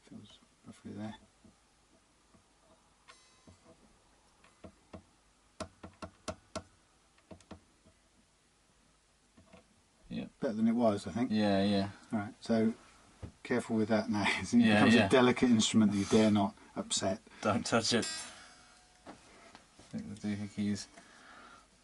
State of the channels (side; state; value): both; identical; correlation 1.00